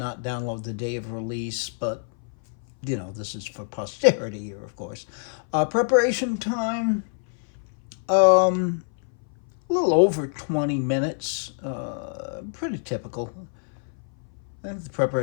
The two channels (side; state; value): right; silent; 58 dB below the other